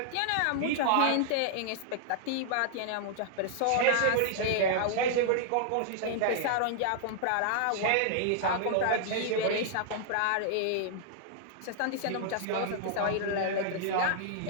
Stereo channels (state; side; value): different; both; correlation -0.01